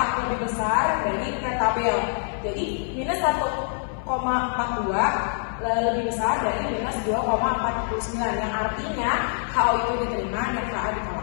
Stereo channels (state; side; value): silent; right; 58 dB below the other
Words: lebih besar dari T tabel. Jadi minus 1,42 lebih besar dari minus 2,49, yang artinya HO itu diterima dan HA